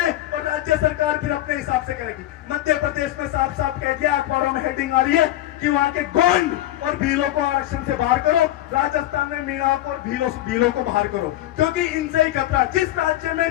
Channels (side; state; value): right; quieter; 14.4 dB